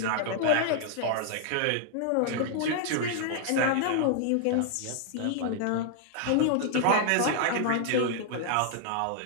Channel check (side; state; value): both; different; correlation 0.00